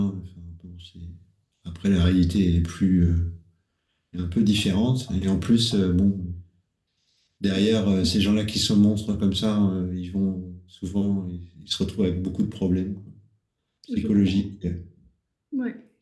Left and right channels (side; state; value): both; identical; correlation 1.00